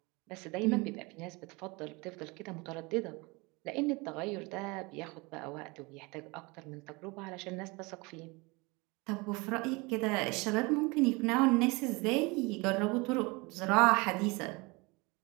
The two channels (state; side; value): quieter; left; 26.0 dB